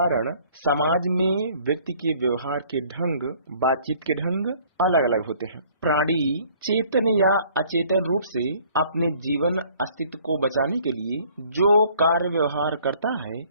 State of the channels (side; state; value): both; inverted; correlation -0.57